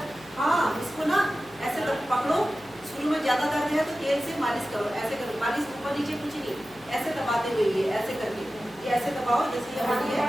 हाँ, इसको ना ऐसे पकड़ो, शुरू में ज्यादा दर्द है तो तेल से मालिश करो, ऐसे करो, मालिश ऊपर नीचे कुछ नहीं, ऐसे दबाते हुए ये ऐसे करके, ये ऐसे दबाओ जैसे ये वाली है।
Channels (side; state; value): left; noise; hum, 25 dB below the sound